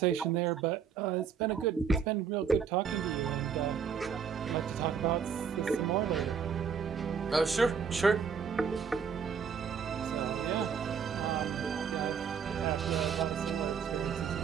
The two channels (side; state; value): left; quieter; 6.8 dB